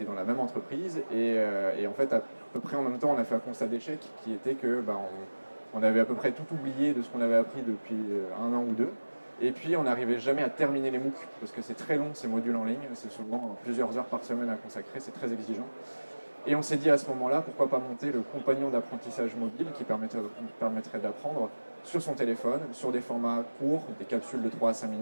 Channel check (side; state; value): both; inverted; correlation -1.00